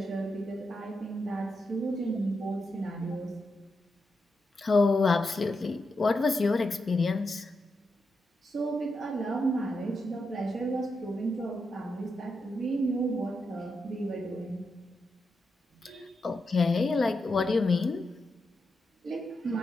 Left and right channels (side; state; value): both; normal; correlation 0.86